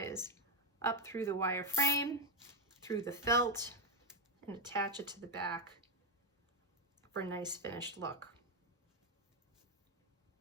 up through the wire frame, through the felt, and attach it to the back for a nice finished look.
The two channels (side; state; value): both; normal; correlation 0.06